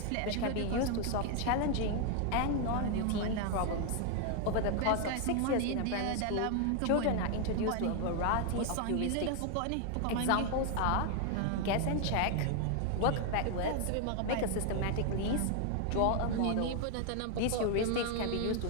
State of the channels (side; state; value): both; different; correlation 0.00